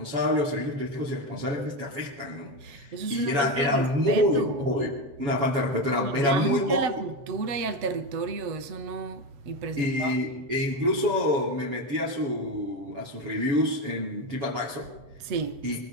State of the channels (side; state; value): left; late; 7.2 ms